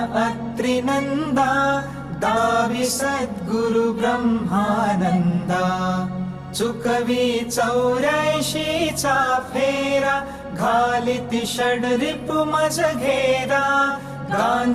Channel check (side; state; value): both; identical; correlation 1.00